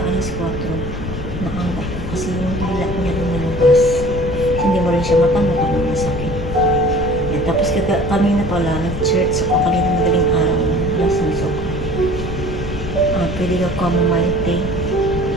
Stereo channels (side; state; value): left; noise; rumble, 7 dB below the sound